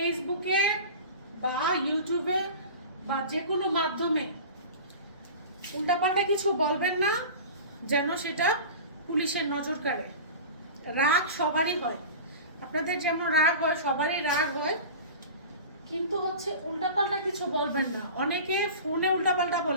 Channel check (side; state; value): both; inverted; correlation -0.35